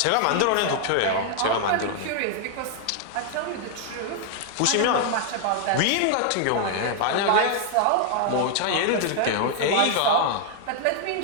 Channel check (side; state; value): both; different; correlation 0.00